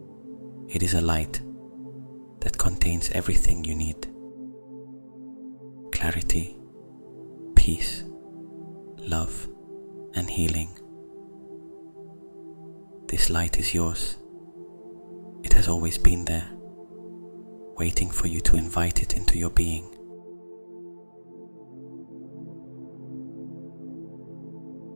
It is a light that contains everything you need: clarity, peace, love, and healing. This light is yours. It has always been there, waiting for you to invite it into your being.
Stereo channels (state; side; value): inverted; both; correlation -1.00